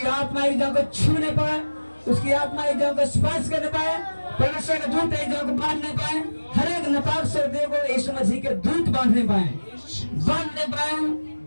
आत्मा एक जन को छूने पाए, उसकी आत्मा एक जन को स्पर्श करने पाए, परमेश्वर के दूत एक जन को बांधने पाए, हर एक नापाक शब्द को यीशु मसीह के दूत बांधने पाए।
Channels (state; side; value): inverted; both; correlation -1.00